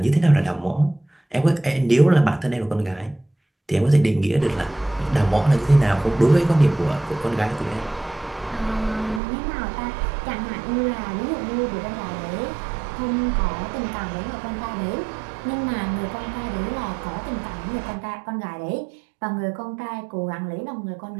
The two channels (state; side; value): drops out; left; at 9.2 s